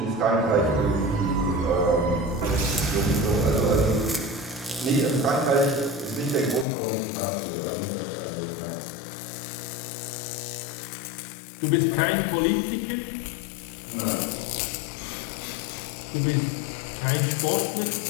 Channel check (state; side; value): drops out; right; at 6.7 s